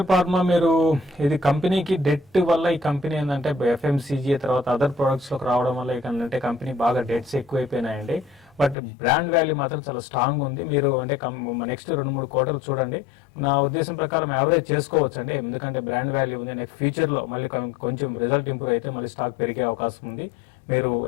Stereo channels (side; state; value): right; drops out; at 8.8 s